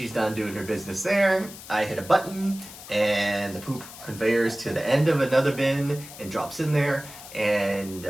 done doing her business there, I hit a button and the poop conveyors to the end of another bin and drops in there. And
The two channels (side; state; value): left; noise; hiss, 15 dB below the sound